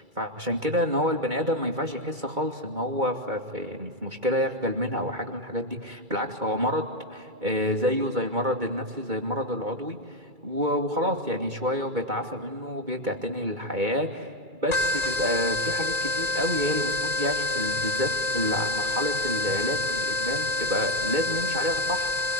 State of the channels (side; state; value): left; late; 2.3 ms